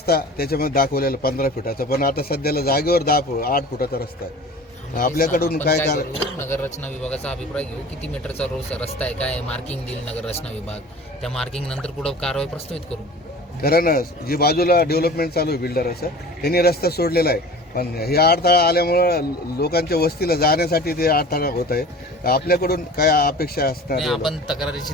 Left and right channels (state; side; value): normal; both; correlation 0.40